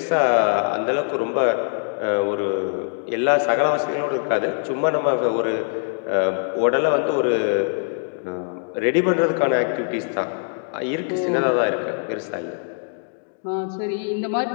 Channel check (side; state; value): right; silent; digital silence